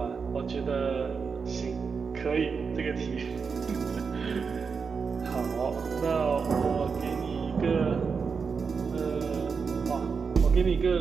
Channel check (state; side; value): quieter; left; 5.5 dB